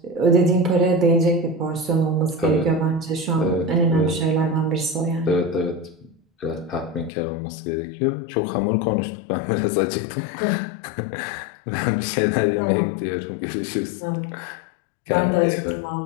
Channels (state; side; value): drops out; right; at 7.1 s